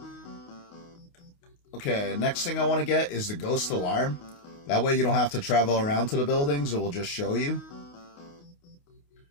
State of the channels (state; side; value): late; right; 28 ms